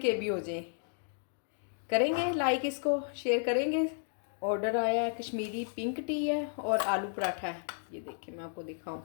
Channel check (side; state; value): right; silent; digital silence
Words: भी हो जाए। करेंगे लाइक, इसको शेयर करेंगे। ऑर्डर आया है, कश्मीरी पिंक टी है और आलू पराठा है। ये देखिए मैं आपको दिखाऊं।